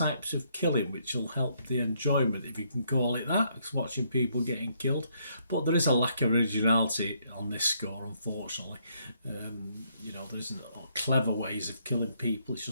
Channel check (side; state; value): both; inverted; correlation -0.72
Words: of killing, which will help the enjoyment, if you can call it that, watching people getting killed. But there is a lack of originality on this score, unfortunately. There isn't clever ways of killing people. It's